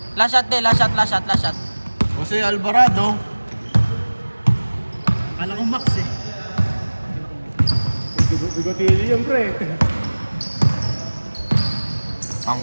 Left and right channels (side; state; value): both; inverted; correlation -1.00